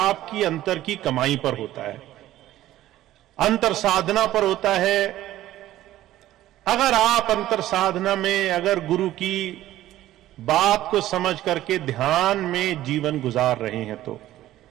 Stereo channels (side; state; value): left; quieter; 14.3 dB